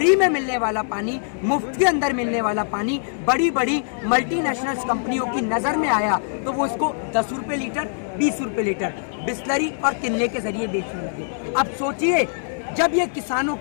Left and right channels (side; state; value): right; silent; digital silence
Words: में मिलने वाला पानी, मुफ्त के अंदर मिलने वाला पानी बड़ी बड़ी मल्टीनेशनल कंपनियों की नज़र में आया तो वो इसको 10 रुपये लीटर, 20 रुपये लीटर बिस्लरी और किनले के जरिए बेचने लगे। अब सोचिए, जब ये किसानों